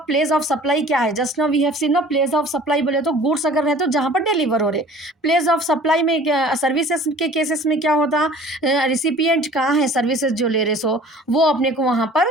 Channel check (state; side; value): normal; both; correlation 0.47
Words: place of supply क्या है, just now we have seen ना, प्लेस ऑफ सप्लाई बोले तो गुड्स अगर रहते तो जहाँ पर डिलीवर हो रहे, प्लेस ऑफ सप्लाई में सर्विसेज के केसेस में क्या होता, रिसिपिएंट कहाँ है सर्विसेज जो ले रहे सो वो अपने को वहाँ